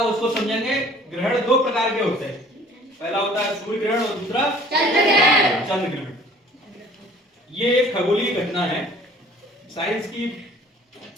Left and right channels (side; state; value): both; normal; correlation 0.51